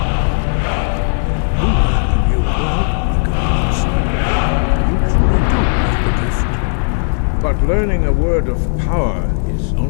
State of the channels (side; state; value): right; silent; digital silence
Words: But learning a word of power is